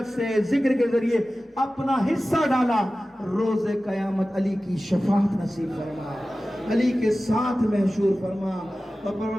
سے، ذکر کے ذریعے اپنا حصہ ڈالا، روز قیامت علی کی شفاعت نصیب فرما، علی کے ساتھ محشور فرما۔ اور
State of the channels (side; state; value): both; normal; correlation 0.95